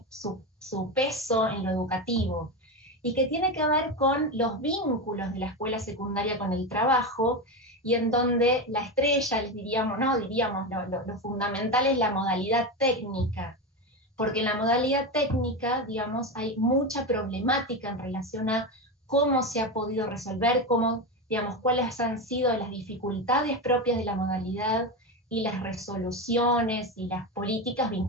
su peso en lo educativo, y que tiene que ver con los vínculos de la escuela secundaria con el trabajo, y en donde la estrella, les diríamos, no, diríamos, lo fundamental es la modalidad técnica, porque en la modalidad técnica, digamos, hay mucha problemática en relación a cómo se ha podido resolver, cómo, digamos, cuáles han sido las dificultades propias de la modalidad, y las resoluciones y las políticas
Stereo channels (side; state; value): both; normal; correlation 0.17